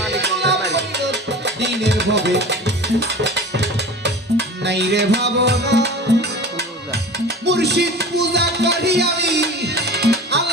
দিনের ভবে নাই রে ভাবনা, মুর্শিদ পূজা করি আমি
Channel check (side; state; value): both; normal; correlation 0.37